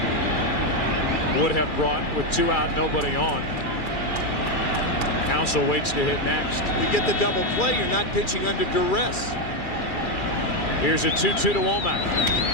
would have brought with 2 out, nobody on. Counsell waits to hit next. You get the double play, you're not pitching under duress. Here's a 2-2 to Womack.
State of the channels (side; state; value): right; late; 2.4 ms